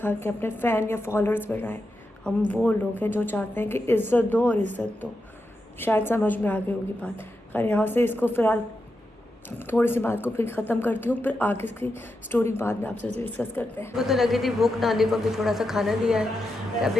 अपने फ़ैन या फॉलोअर्स बढ़ाएं। हम वो लोग हैं जो चाहते हैं कि इज़्ज़त दो और इज़्ज़त दो। शायद समझ में आ गई होगी बात। खैर यहाँ से इसको फ़िलहाल थोड़ी सी बात को फिर ख़त्म करती हूँ, फिर आगे की स्टोरी बाद में आपसे डिस्कस करते हैं। मुझे तो लगी थी भूख, नानी को भी थोड़ा सा खाना दिया है,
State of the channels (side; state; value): both; normal; correlation 0.87